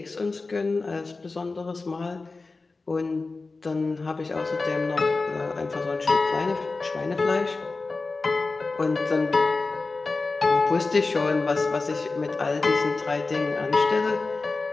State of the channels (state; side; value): quieter; right; 3.7 dB